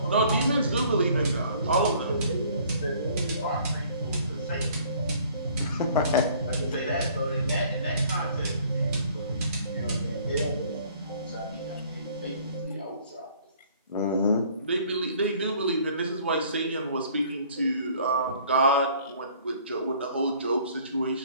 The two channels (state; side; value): inverted; both; correlation -0.56